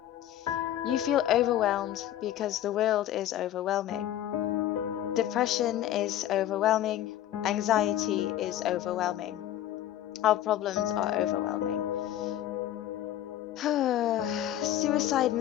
You feel overwhelmed because the world is overwhelming. Depression is overwhelming. Anxiety is overwhelming. Our problems are overwhelming. Suicide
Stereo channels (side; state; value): right; quieter; 12.3 dB